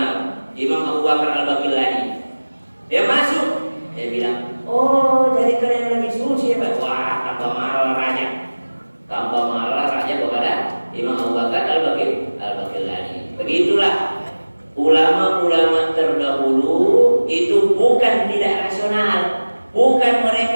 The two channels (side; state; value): both; inverted; correlation -1.00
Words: Imam Abu Bakar Al-Baqillani dia masuk, dia bilang, oh jadi kalian lebih suci ya Pak? Wah, tambah marah raja kepada Imam Abu Bakar Al-Baqillani. Begitulah ulama-ulama terdahulu itu bukan tidak rasional, bukan